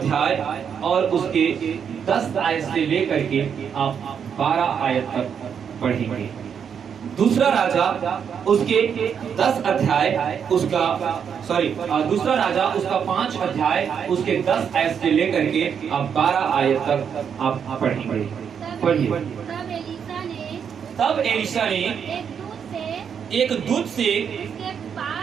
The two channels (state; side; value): quieter; left; 7.4 dB